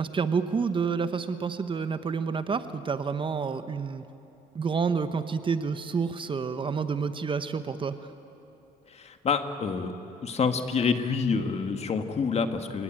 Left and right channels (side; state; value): both; normal; correlation 0.61